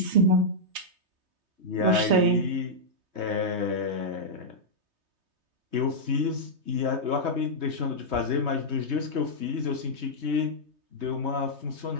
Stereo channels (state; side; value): late; left; 3.2 ms